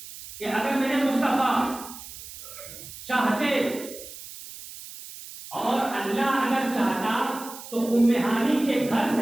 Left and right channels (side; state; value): right; noise; hiss, 14 dB below the sound